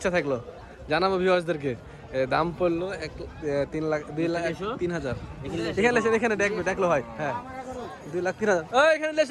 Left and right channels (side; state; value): both; identical; correlation 1.00